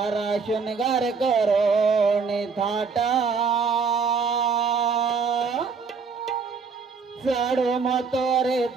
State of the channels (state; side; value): quieter; left; 5.3 dB